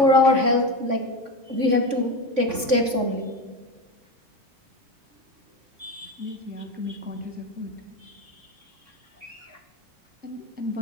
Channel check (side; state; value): left; late; 3.5 ms